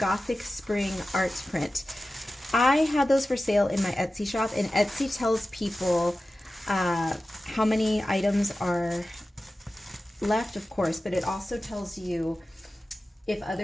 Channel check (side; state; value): both; normal; correlation 0.95